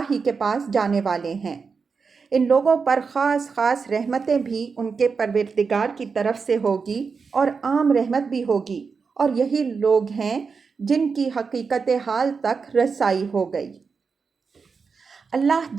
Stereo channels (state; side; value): quieter; left; 5.2 dB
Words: ہی کے پاس جانے والے ہیں۔ ان لوگوں پر خاص خاص رحمتیں بھی ان کے پروردگار کی طرف سے ہوگی اور عام رحمت بھی ہوگی، اور یہی لوگ ہیں جن کی حقیقت حال تک رسائی ہو گئی۔ اللہ